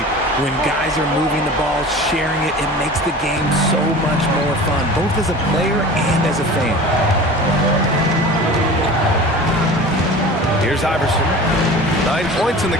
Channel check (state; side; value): normal; both; correlation 0.38